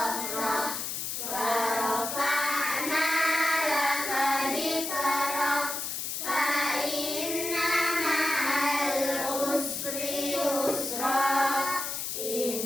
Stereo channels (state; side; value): noise; left; hiss, 3 dB below the sound